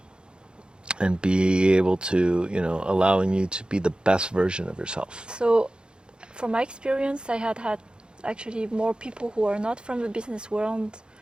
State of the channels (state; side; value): late; left; 0.050 ms